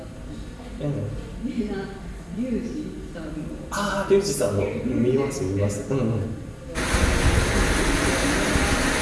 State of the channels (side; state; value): both; identical; correlation 1.00